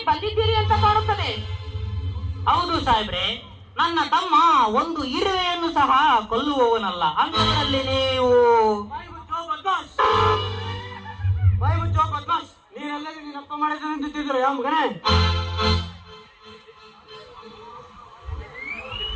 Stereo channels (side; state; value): both; identical; correlation 1.00